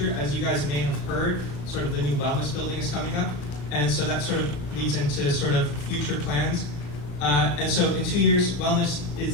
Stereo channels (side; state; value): right; late; 34 ms